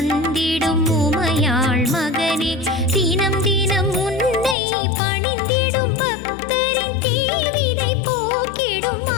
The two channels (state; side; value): drops out; right; at 4.5 s